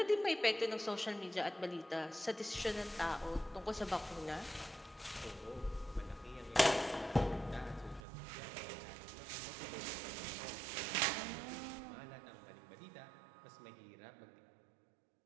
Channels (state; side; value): drops out; left; at 8.0 s